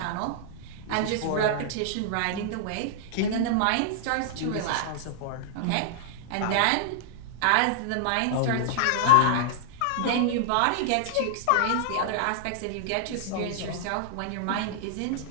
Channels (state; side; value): different; both; correlation -0.01